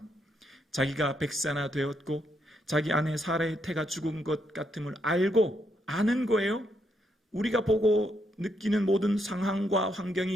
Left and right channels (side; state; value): both; normal; correlation 0.77